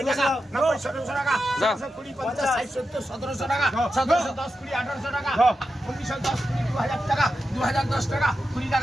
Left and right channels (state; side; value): normal; both; correlation 0.90